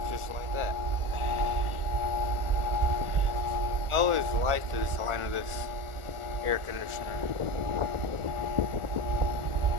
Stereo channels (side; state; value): left; late; 1.4 ms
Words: Just like that. I always liked the design of this air conditioner.